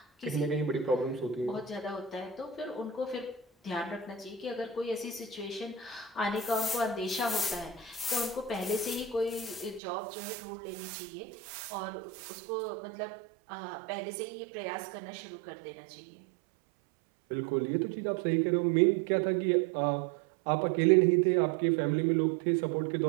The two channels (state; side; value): drops out; left; at 9.8 s